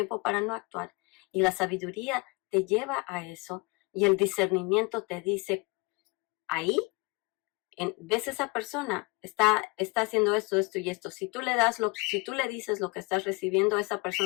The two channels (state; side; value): quieter; right; 27.0 dB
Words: para no actuar. Y la sabiduría te lleva a eso y el discernimiento te dice, ahí, ves esa persona, está haciendo esto, esto y esto. Si tú le dices lo que estás recibiendo, esa